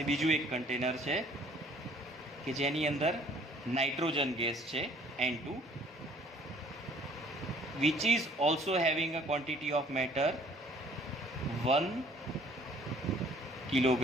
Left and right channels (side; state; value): both; normal; correlation 0.57